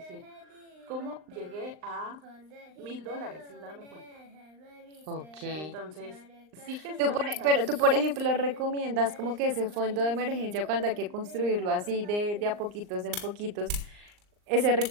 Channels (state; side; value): late; left; 39 ms